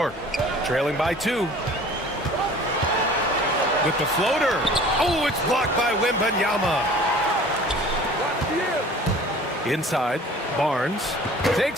Trailing by 2. With the floater. Oh, it's blocked by Wembanyama. Inside, Barnes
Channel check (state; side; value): normal; both; correlation 0.46